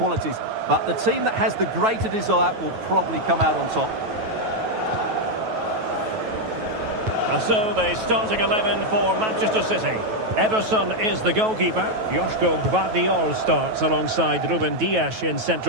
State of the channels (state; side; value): late; left; 9.2 ms